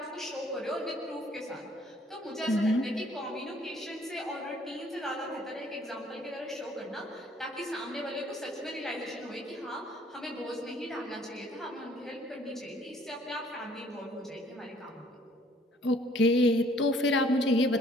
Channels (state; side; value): normal; both; correlation 0.60